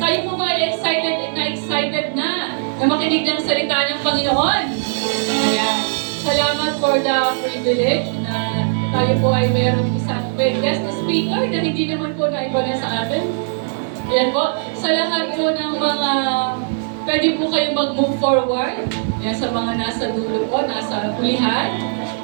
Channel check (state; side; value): silent; left; digital silence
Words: Tayo po ba ay excited na makinig ng salita ng Panginoon. Ayan. Salamat for the privilege na tayo po ay merong isang guest speaker na hindi naman po naiba na sa atin. Ayan po. Salamat po ng mga pwede po kayong mag-move forward. Ayan, sa mga nasa dulo po, nasa hulihan.